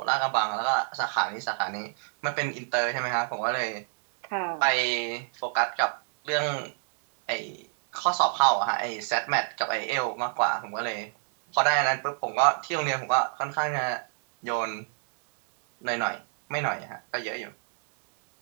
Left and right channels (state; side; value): silent; left; 60 dB below the other